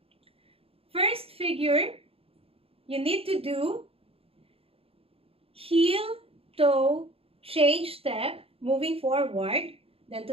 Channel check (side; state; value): left; late; 0.28 ms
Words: First figure, you need to do heel, toe, change step, moving forward. Then